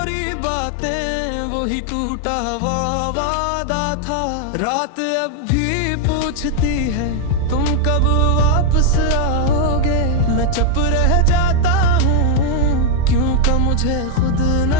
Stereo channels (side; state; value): both; different; correlation 0.00